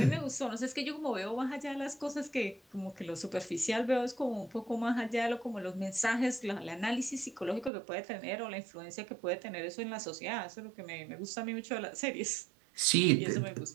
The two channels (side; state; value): left; drops out; at 7.7 s